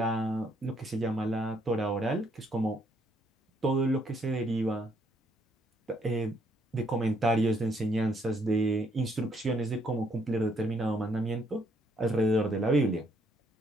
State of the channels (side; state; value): both; normal; correlation 0.70